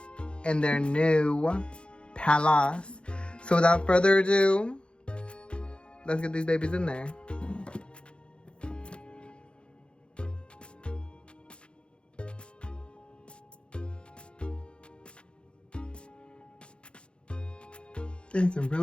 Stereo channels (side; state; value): right; late; 0.056 ms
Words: in their new palace. So without further ado, let's get these babies in there. Things are